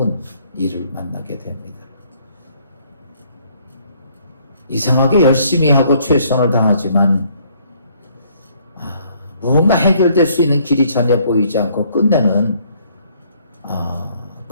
일을 만나게 됩니다. 이상하게 열심히 하고 최선을 다하지만 뭔가 해결될 수 있는 길이 전혀 보이지 않고 끝내는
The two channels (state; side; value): inverted; both; correlation -0.64